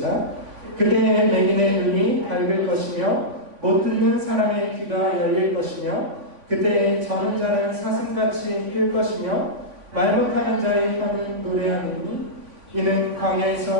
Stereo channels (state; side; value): late; left; 3.5 ms